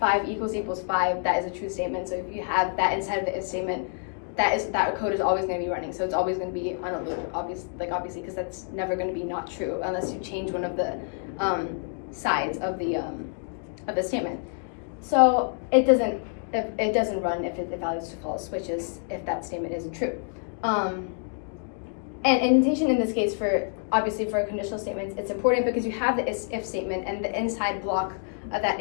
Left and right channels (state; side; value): silent; right; 58 dB below the other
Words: equals 5, that is a true statement. So if you have that inside of the if statement, that code is always going to be running. So it's always going to be on a loop, obviously, because that's never going to be not true unless you change one of the sides of the statement. So it doesn't run if it evaluates to false, which is if that statement isn't true. And indentation in this case, obviously for conditional statements, it's important because you have the if statement, and the inside block of that